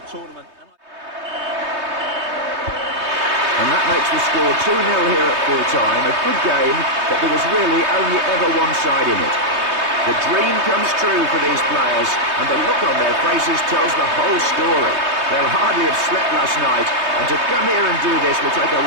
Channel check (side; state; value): left; late; 3.2 ms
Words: tournament. And that makes the score 2-0 here at full-time. A good game, but there was really only ever one side in it. The dream comes true for these players, and the look on their faces tells the whole story. They'll hardly have slept last night, and to come here and do this will take a